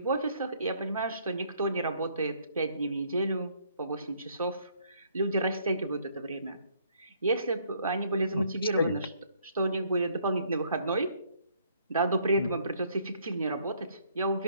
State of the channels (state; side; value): inverted; both; correlation -0.65